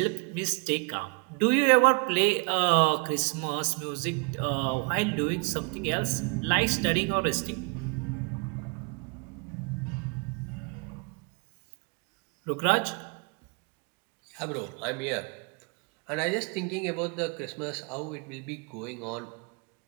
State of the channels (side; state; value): left; quieter; 33.6 dB